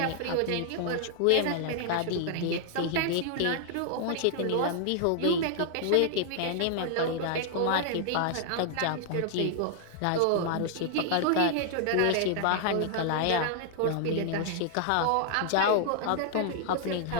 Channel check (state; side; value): different; both; correlation -0.01